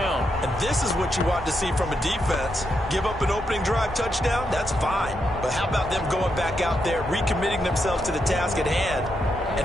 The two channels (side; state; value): both; normal; correlation 0.82